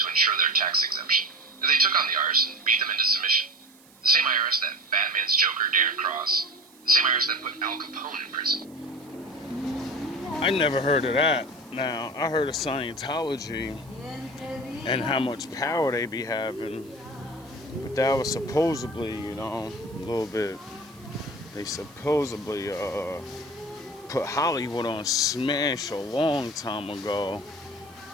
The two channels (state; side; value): noise; right; hiss, 27 dB below the sound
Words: ensure their tax exemption. They took on the IRS and beat them into submission. The same IRS that Batman's Joker dared cross. The same IRS that put Al Capone in prison. I never heard of that. Now, I heard of Scientology and how much power they be having. But that was supposedly, a little bit... They supposedly put Hollywood on smash a long time ago.